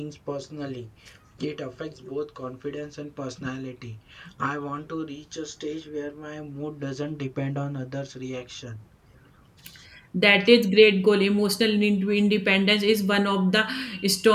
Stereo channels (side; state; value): both; identical; correlation 1.00